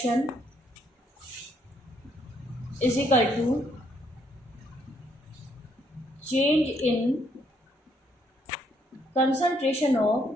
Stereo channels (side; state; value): both; normal; correlation 0.71